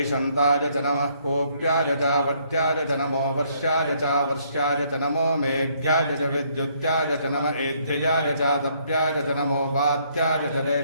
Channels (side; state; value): both; inverted; correlation -0.68